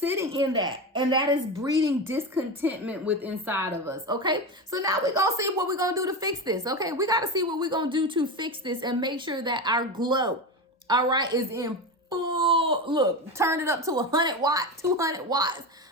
in that, and that is breeding discontentment with inside of us. Okay, so now we're gonna see what we're gonna do to fix this. Okay, we got to see what we're gonna do to fix this and make sure that our glow, all right, is in full, look, turn it up to 100 watts, 200 watts,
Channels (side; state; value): both; normal; correlation 0.20